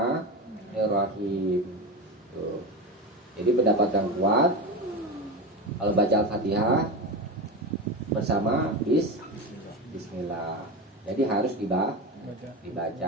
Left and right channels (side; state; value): both; normal; correlation 0.22